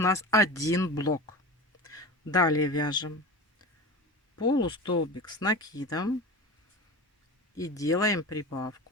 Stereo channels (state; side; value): normal; both; correlation 0.30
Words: один блок. Далее вяжем полустолбик с накидом и делаем